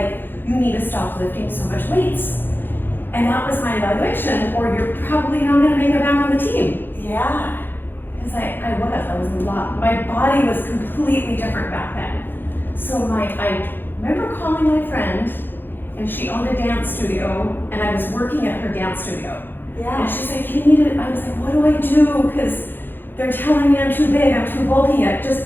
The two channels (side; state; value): right; late; 0.098 ms